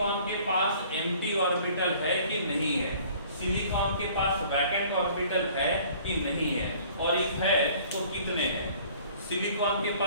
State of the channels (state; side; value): inverted; both; correlation -0.53